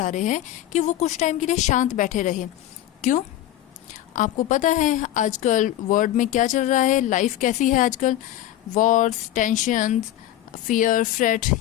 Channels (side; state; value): right; quieter; 13.2 dB